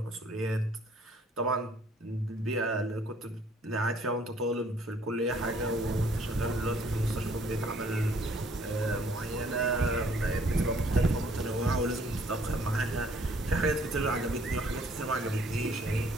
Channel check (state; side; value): normal; both; correlation 0.61